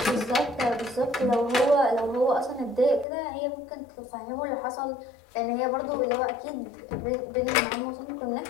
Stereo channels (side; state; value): right; drops out; at 3.1 s